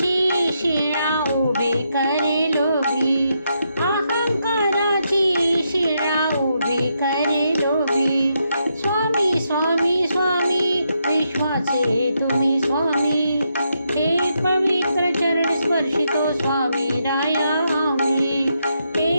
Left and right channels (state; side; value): inverted; both; correlation -0.80